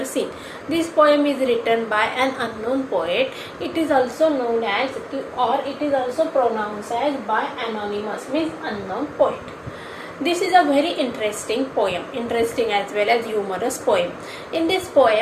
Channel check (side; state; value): both; identical; correlation 1.00